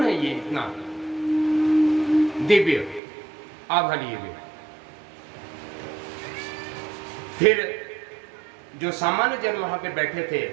है ये इतना दिव्य आभा लिए हुए। फिर जो सामान्य जन वहां पे बैठे थे,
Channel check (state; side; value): drops out; left; at 3.0 s